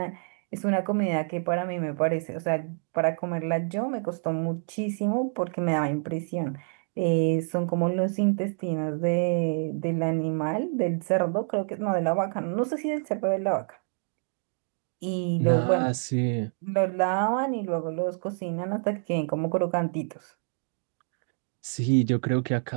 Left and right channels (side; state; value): left; silent; 60 dB below the other